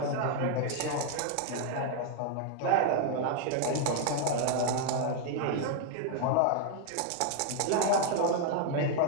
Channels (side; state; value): both; different; correlation 0.01